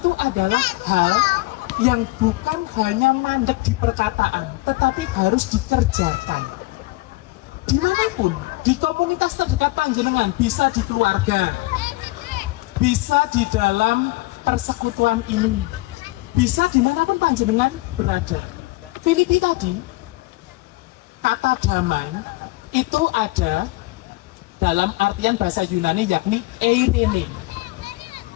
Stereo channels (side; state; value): right; quieter; 21.6 dB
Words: adalah hal yang bukan hanya mandek di perkataan, tetapi harus dikerjakan. Dimanapun, di komunitas terdekat panjenengan, bisa di keluarga, bisa di dalam persekutuan ini, bisa dimanapun panjenengan berada. Filipi tadi, kata damai itu ada dalam artian bahasa Yunani yakni eirene.